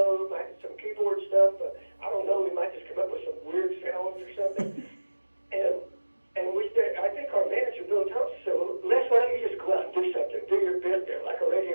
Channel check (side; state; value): both; inverted; correlation -1.00